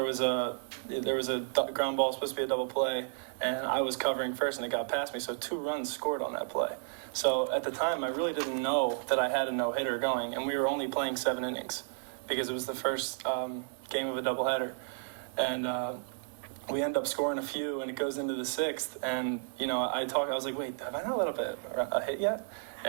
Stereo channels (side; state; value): left; silent; digital silence